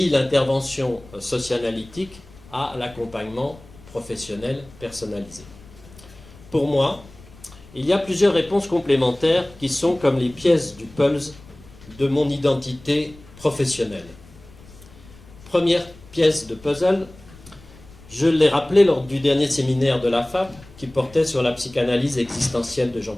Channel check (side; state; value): left; noise; rumble, 22 dB below the sound